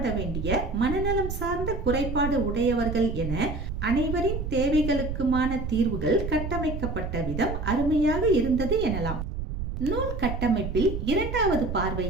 வேண்டிய மனநலம் சார்ந்த குறைபாடு உடையவர்கள் என அனைவரின் தேவைகளுக்குமான தீர்வுகள் கட்டமைக்கப்பட்ட விதம் அருமையாக இருந்தது எனலாம். நூல் கட்டமைப்பில் இரண்டாவது பார்வை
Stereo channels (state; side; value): noise; right; rumble, 5 dB below the sound